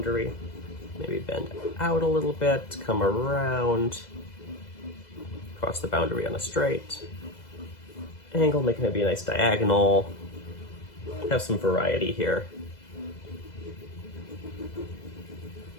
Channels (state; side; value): late; right; 2.0 ms